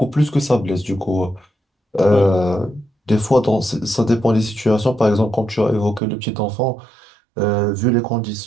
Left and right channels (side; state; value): left; drops out; at 6.0 s